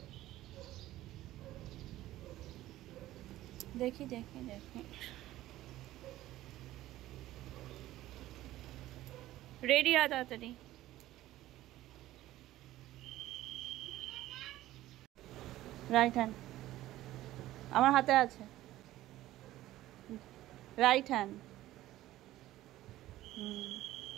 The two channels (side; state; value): left; quieter; 15.2 dB